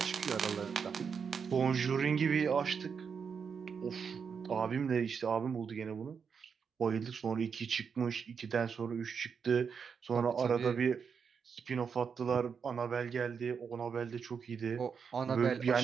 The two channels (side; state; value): left; quieter; 6.3 dB